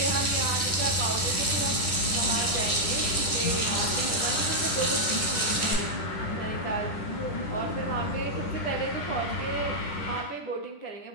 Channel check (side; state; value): right; late; 10 ms